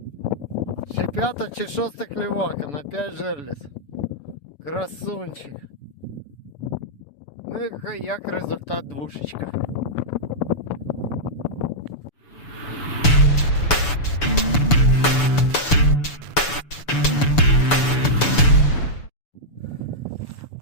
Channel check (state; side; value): late; right; 6.9 ms